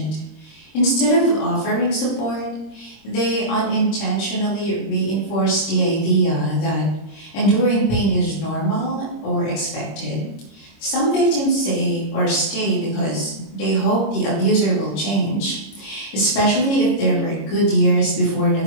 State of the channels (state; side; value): late; right; 25 ms